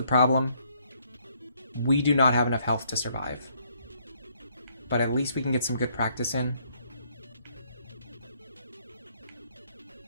problem. We do not have enough health to survive. But at least we can get some good practice in.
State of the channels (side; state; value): both; inverted; correlation -0.68